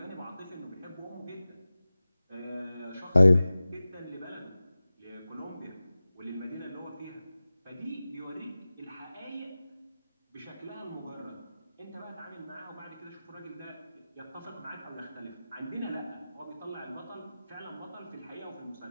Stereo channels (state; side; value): inverted; both; correlation -0.96